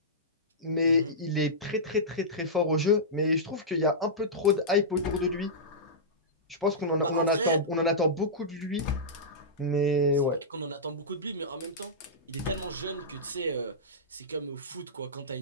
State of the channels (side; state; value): both; normal; correlation -0.15